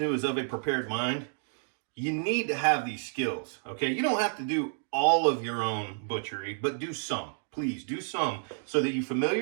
who is of a prepared mind, you need to have these skills, okay? You don't have to do all of your own butchery, but do some. Please do some so that you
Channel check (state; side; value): silent; left; digital silence